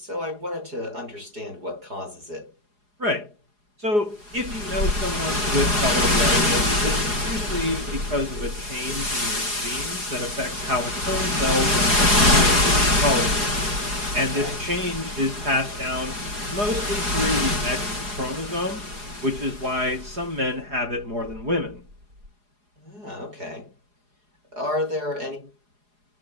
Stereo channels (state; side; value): late; left; 4.8 ms